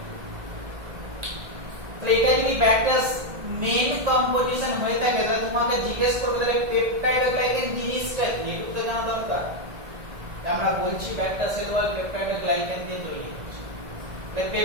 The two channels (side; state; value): left; late; 1.9 ms